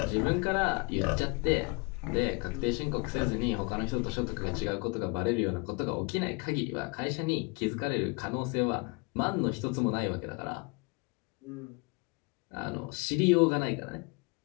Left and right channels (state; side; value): quieter; right; 30.7 dB